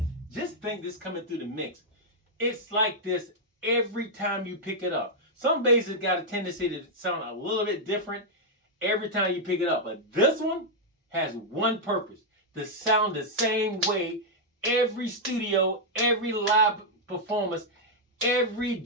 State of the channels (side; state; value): both; normal; correlation -0.04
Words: Just think this coming through the mix. It's like this every time you pick it up. Some basses got a tendency to sound a little bit different every time you pick it up, but this one has one purpose: to sound the same way every studio, every live performance, every